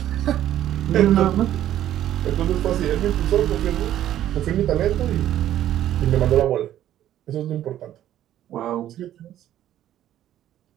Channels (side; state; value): left; quieter; 12.1 dB